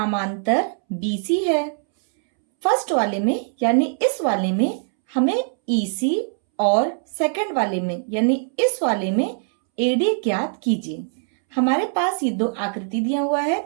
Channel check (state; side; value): silent; left; 64 dB below the other